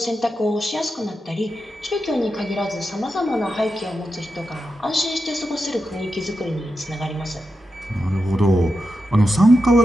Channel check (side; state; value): both; normal; correlation 0.89